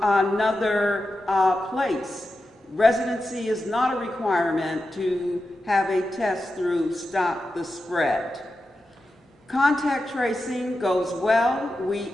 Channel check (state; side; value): normal; both; correlation 0.90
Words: another place. Residency is not a requirement to have a test through Stop the Spread. Contact tracing goes well. We